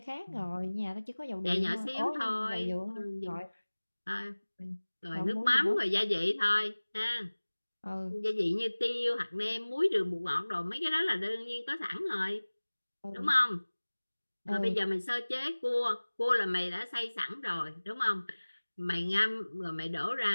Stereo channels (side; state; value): both; inverted; correlation -1.00